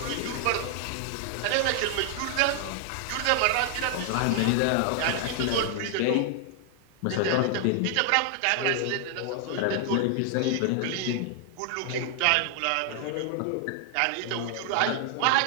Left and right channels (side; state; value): both; different; correlation 0.00